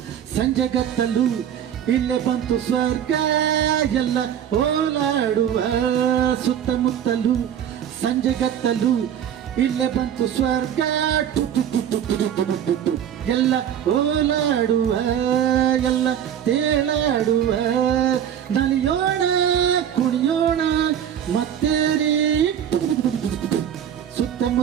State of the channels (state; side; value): quieter; left; 9.6 dB